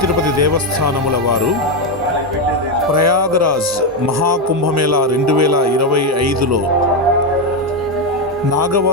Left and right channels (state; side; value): normal; both; correlation 0.07